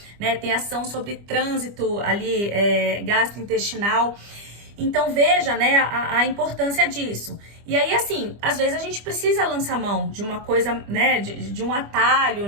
né? Tem ação sobre trânsito ali gastrointestinal. Então veja, né, a importância disso. E aí, assim, às vezes a gente precisa lançar mão de uma coisa, né, de um atalho,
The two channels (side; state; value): left; late; 25 ms